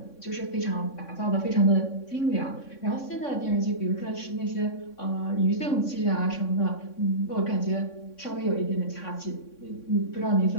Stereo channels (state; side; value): late; right; 3.6 ms